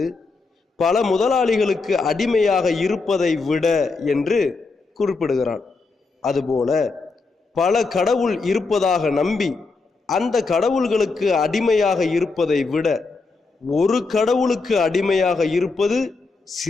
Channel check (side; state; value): right; quieter; 4.0 dB